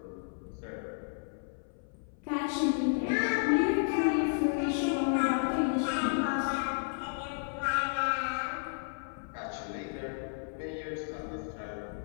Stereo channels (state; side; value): silent; right; 56 dB below the other